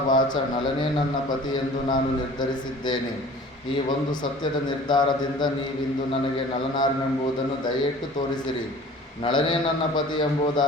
ವಾಚ ನಳನೇ ನನ್ನ ಪತಿಯೆಂದು ನಾನು ನಿರ್ಧರಿಸಿದ್ದೇನೆ. ಈ ಒಂದು ಸತ್ಯದ ನಿರ್ಧಾರದಿಂದ ನೀವಿಂದು ನನಗೆ ನಳನಾರೆಂಬುದನ್ನು ದಯೆಯಿಟ್ಟು ತೋರಿಸಿರಿ. ನಳನೇ ನನ್ನ ಪತಿ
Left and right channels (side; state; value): both; normal; correlation 0.45